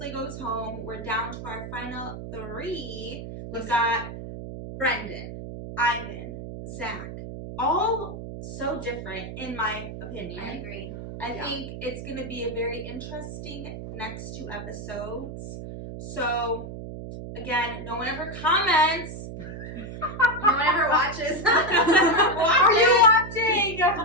goes home. We're down to our final 3. We've got Brendan, Ivan, Zach. All so different, in my opinion. I agree. I think it's going to be a very interesting next 2 episodes. So, again, no one ever comments. No one ever watches. Are you watching?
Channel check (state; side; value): noise; right; hum, 9 dB below the sound